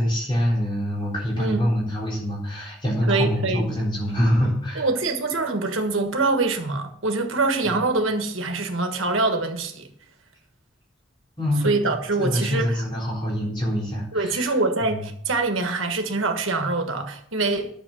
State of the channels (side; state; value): both; normal; correlation 0.38